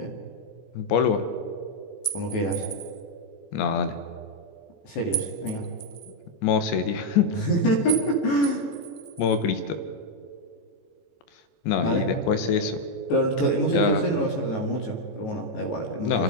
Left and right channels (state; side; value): late; right; 14 ms